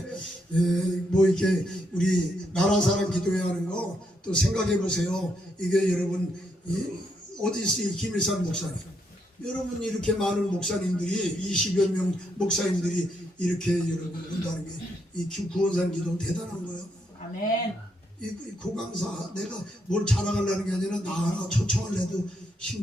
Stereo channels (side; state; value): both; normal; correlation 0.77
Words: 뭐 이렇게 우리 나라 사람 기도회 하는 거 또 생각해 보세요. 이게 여러분 어디 있어요? 김일산 목사님. 여러분 이렇게 많은 목사님들이 20여 명 목사님들이 이렇게 여러분 온다는 게 이 구원산 기도는 대단한 거예요. 아멘. 이 고강사 내가 뭘 자랑하려는 게 아니라 나 하나 초청을 해도